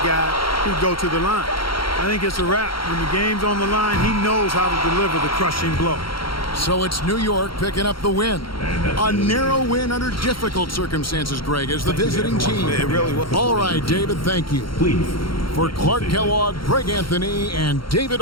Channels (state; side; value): late; right; 0.73 ms